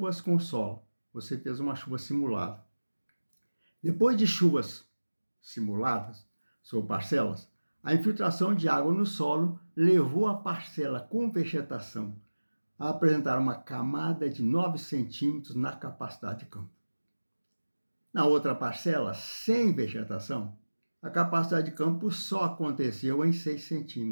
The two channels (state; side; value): inverted; both; correlation -1.00